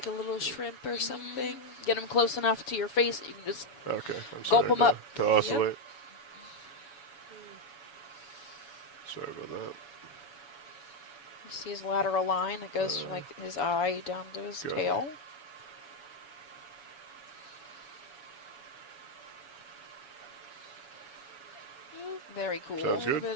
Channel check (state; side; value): late; right; 7.1 ms